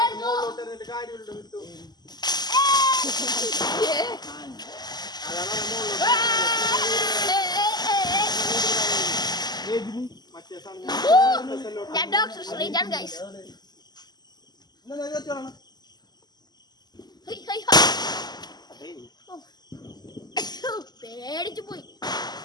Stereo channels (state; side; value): late; right; 0.20 ms